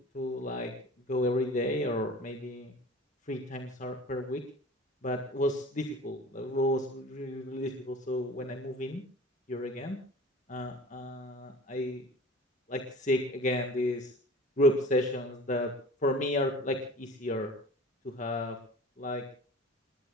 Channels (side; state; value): both; normal; correlation 0.41